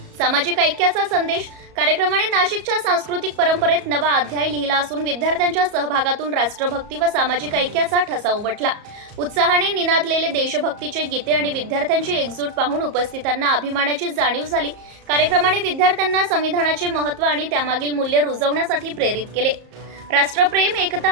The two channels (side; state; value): left; late; 34 ms